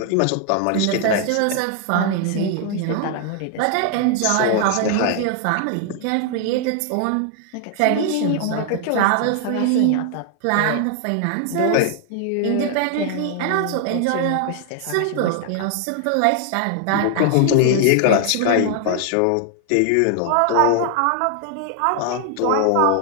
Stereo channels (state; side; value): different; both; correlation 0.00